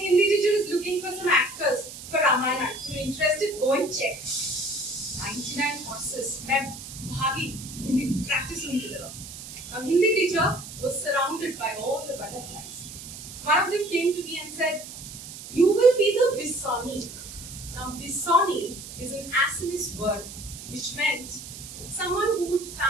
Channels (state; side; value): noise; right; hiss, 12 dB below the sound